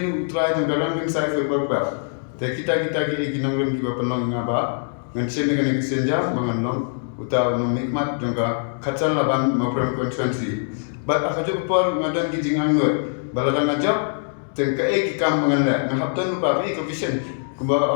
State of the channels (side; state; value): right; silent; digital silence